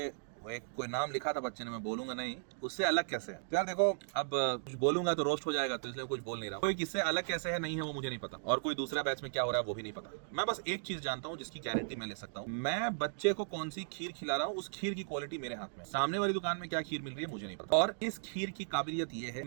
वो एक कोई नाम लिखा था बच्चे ने, मैं बोलूंगा नहीं, उससे अलग कैसे है। तो यार देखो, अब कुछ बोलूंगा तो रोस्ट हो जाएगा, तो इसलिए कुछ बोल नहीं रहा। कोई किससे अलग कैसे है नहीं है वो मुझे नहीं पता, और कोई दूसरा बैच में क्या हो रहा है वो भी नहीं पता। मैं बस एक चीज जानता हूँ जिसकी गारंटी मैं ले सकता हूँ, मैं बच्चे को कौन सी खीर खिला रहा हूँ उस खीर की क्वालिटी मेरे हाथ में। सामने वाली दुकान में क्या खीर मिल रही है मुझे नहीं पता। और इस खीर की काबिलियत ये है,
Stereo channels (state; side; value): silent; left; digital silence